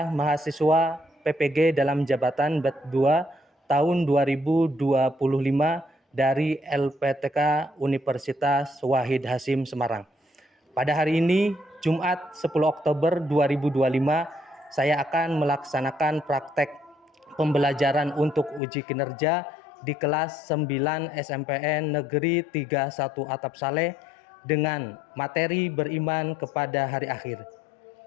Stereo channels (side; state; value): right; drops out; at 18.6 s